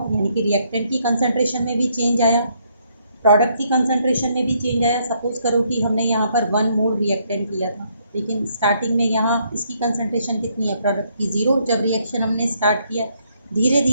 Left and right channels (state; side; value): inverted; both; correlation -0.71